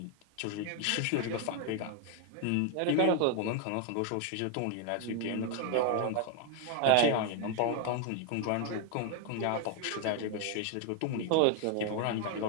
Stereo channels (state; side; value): different; both; correlation 0.01